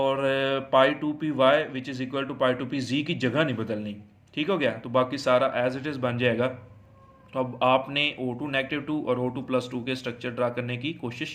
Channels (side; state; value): both; identical; correlation 1.00